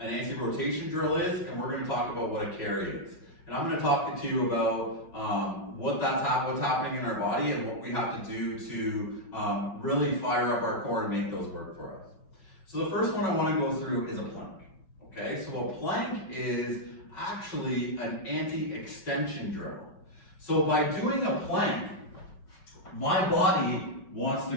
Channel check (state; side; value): late; right; 5.4 ms